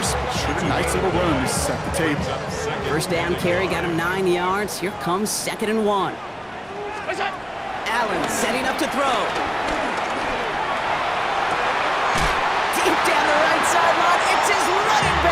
but sure a nice little run to set the table. First down carry got him 9 yards. Here comes second and 1. What's that? Allen setting up to throw. Deep down the right sideline. It's his running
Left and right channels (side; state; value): both; identical; correlation 1.00